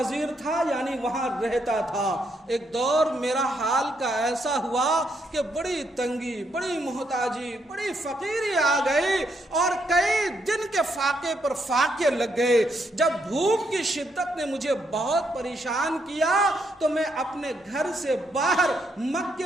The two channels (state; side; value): normal; both; correlation 0.76